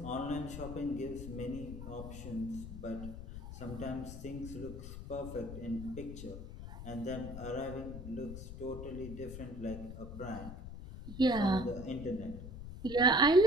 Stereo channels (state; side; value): noise; left; rumble, 10 dB below the sound